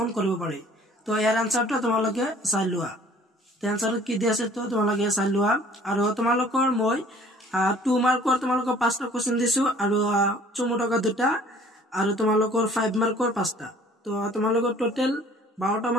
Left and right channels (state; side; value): normal; both; correlation 0.53